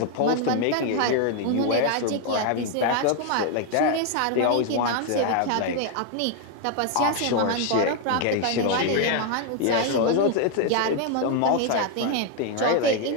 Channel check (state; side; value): different; both; correlation 0.01